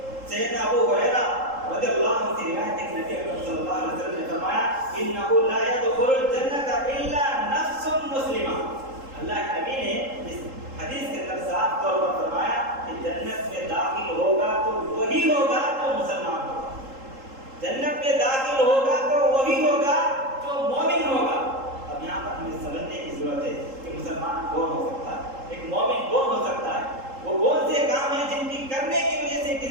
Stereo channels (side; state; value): left; late; 3.8 ms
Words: سیدنا ابو ہریرہ رضی اللہ عنہ سے روایت ہے کہ نبی اکرم صلی اللہ علیہ وسلم نے فرمایا انہ لا يدخل الجنۃ الا نفس مسلمہ۔ اللہ کے نبی نے اس حدیث کے اندر صاف طور پر فرمایا کہ جنت میں داخل ہوگا تو وہی ہوگا جو مسلمان ہوگا، جنت میں داخل ہوگا تو وہی ہوگا جو مومن ہوگا۔ اب یہاں پر ہمیں سمجھنے کی ضرورت ہے کہ مسلمان کون ہو سکتا ہے، ایک مومن کون ہو سکتا ہے، وہ کون سے کام ہیں جن کی کرنے کی وجہ سے ایک